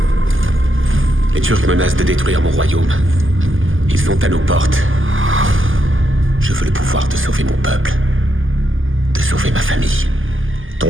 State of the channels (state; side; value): late; left; 0.58 ms